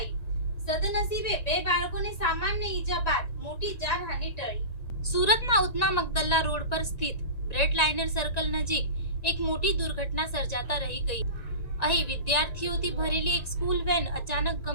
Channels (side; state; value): right; late; 1.9 ms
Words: સદનસીબે બે બાળકોને સામાન્ય ઈજા બાદ મોટી જાનહાનિ ટળી. સુરતના ઉધના મગદલ્લા રોડ પર સ્થિત બ્રેડ લાઇનર સર્કલ નજીક એક મોટી દુર્ઘટના સર્જાતા રહી ગઈ. અહીં વિદ્યાર્થીઓથી ભરેલી એક સ્કૂલ વેન અચાનક